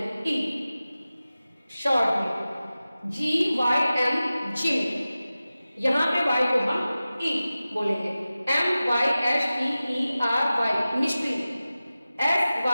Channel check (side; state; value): both; inverted; correlation -0.96